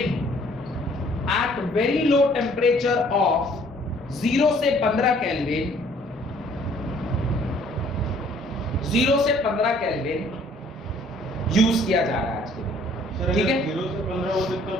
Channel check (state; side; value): normal; both; correlation 0.59